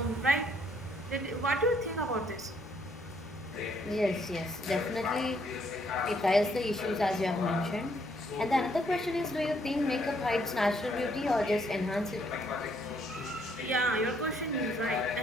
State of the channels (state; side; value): normal; both; correlation 0.69